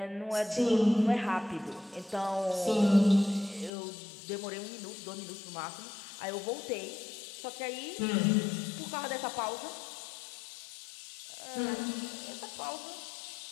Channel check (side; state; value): right; drops out; at 3.7 s